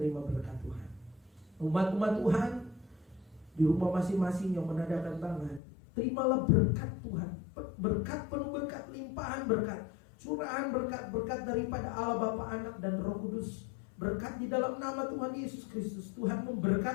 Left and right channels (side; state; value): right; drops out; at 5.6 s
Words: berkat Tuhan. Umat-umat Tuhan di rumah masing-masing yang menandakan tangan, terimalah berkat Tuhan. Berkat penuh berkat, limpahan berkat, curahan berkat daripada Allah Bapa, Anak dan Roh Kudus. Berkat di dalam nama Tuhan Yesus Kristus. Tuhan